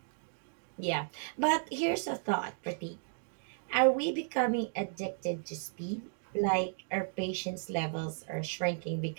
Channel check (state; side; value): silent; left; digital silence